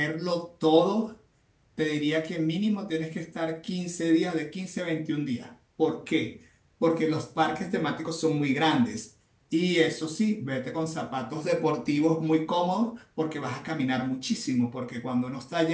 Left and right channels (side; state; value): both; identical; correlation 1.00